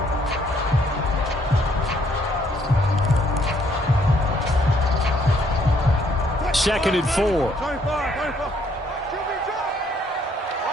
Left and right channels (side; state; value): both; normal; correlation 0.67